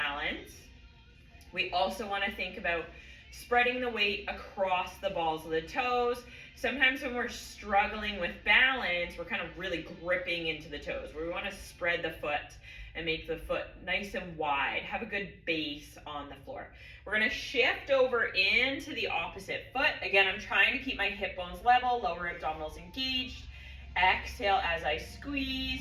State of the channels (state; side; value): identical; both; correlation 1.00